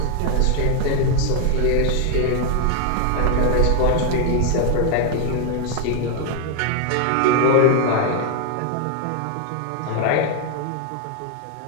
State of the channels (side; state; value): both; different; correlation 0.01